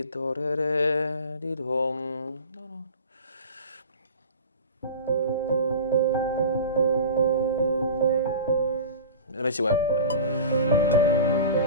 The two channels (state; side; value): inverted; both; correlation -0.34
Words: Let me see what.